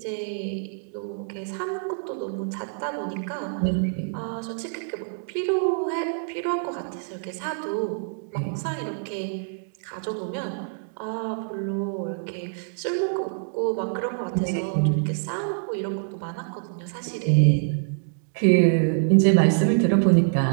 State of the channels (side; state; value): left; silent; digital silence